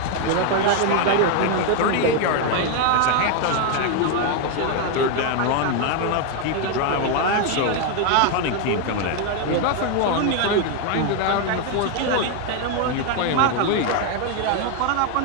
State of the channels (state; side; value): different; both; correlation 0.01